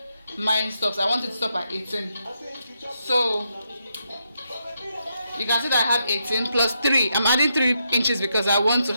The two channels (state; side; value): inverted; both; correlation -0.81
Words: mine stops. I want it to stop at 18. So you can see that I have 18 plus 3. I'm adding 3 inches because I want to